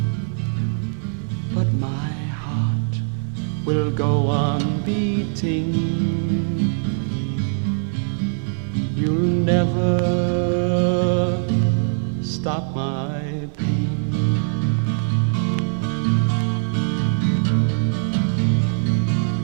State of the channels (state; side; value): silent; left; digital silence